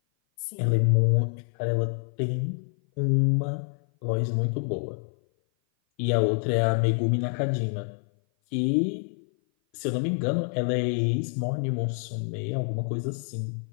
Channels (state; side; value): silent; right; 56 dB below the other